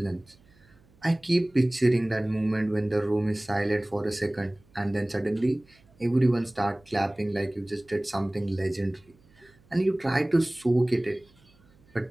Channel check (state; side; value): noise; right; hum, 30 dB below the sound